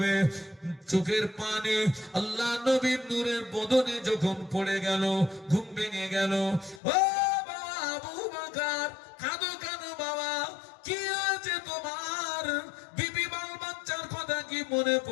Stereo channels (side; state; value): right; drops out; at 6.8 s